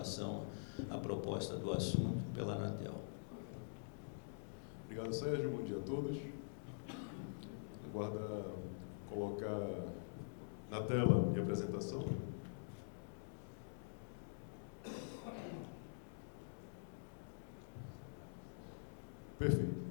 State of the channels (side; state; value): right; silent; digital silence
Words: à proposta do assunto pela Anatel. Obrigado, Sérgio. Bom dia a todos. Aguarda colocar na tela minha apresentação. Perfeito.